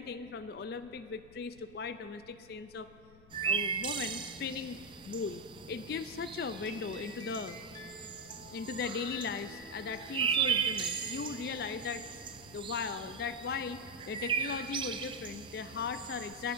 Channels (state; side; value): noise; left; rumble, 23 dB below the sound